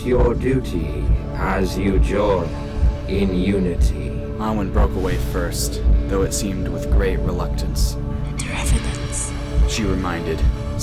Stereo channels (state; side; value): identical; both; correlation 1.00